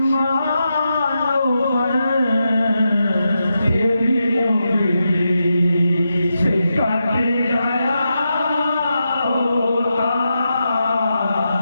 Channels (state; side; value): inverted; both; correlation -0.87